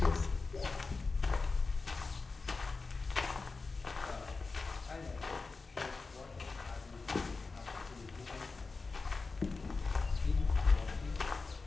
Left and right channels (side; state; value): right; quieter; 4.1 dB